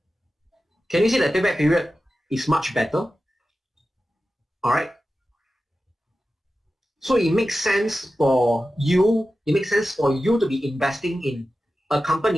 Can you see that payback period is much better? All right. So it makes sense for you. It makes sense for you to be investing in a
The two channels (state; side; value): normal; both; correlation 0.93